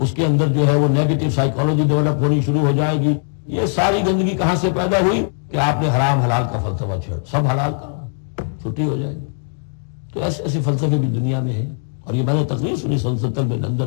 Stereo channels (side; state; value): right; silent; 63 dB below the other